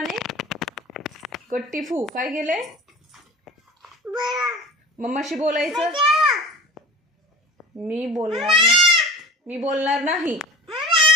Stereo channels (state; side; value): normal; both; correlation 0.38